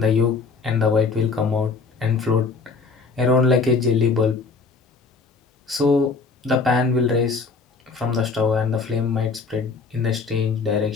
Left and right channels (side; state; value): right; quieter; 4.5 dB